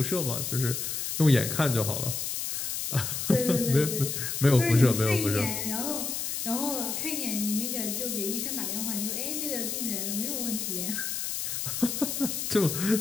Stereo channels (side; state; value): left; noise; hiss, 3 dB below the sound